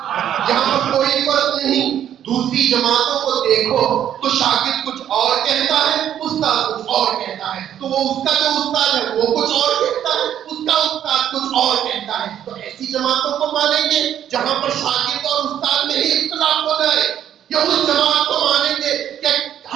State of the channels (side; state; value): left; quieter; 10.3 dB